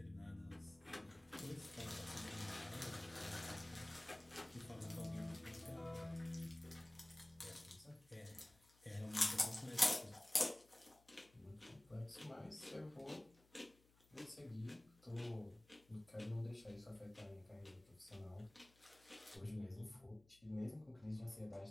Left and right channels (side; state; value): left; noise; hum, 28 dB below the sound